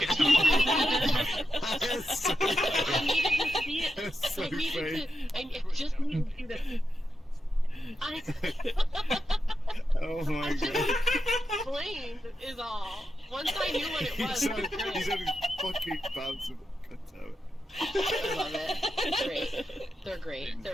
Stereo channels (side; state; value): both; normal; correlation 0.87